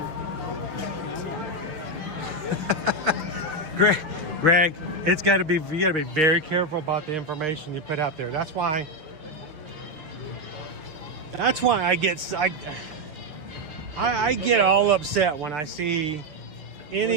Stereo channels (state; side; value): late; left; 6.4 ms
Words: Greg, you got to be very careful about the information you put out there. That's why I get all upset when I see